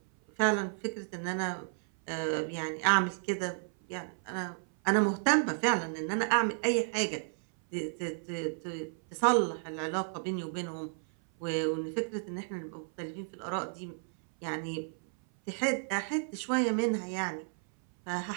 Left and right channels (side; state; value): left; silent; 56 dB below the other